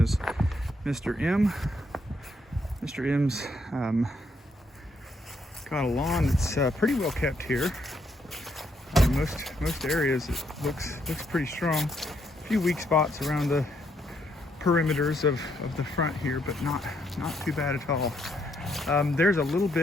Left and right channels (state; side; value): normal; both; correlation 0.74